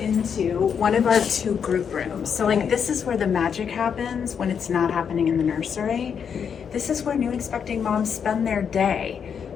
one of our 2 group rooms. So this is where the magic happens when it's not happening in the nursery. This is where new expecting moms spend their day,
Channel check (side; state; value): right; quieter; 7.2 dB